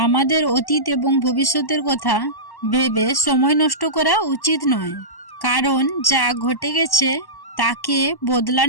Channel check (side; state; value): right; late; 1.1 ms